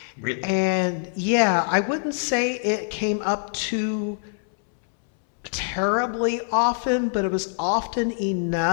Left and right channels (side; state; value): right; silent; 62 dB below the other